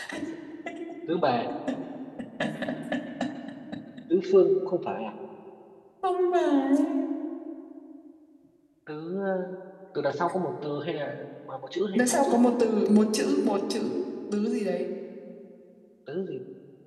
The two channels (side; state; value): both; identical; correlation 1.00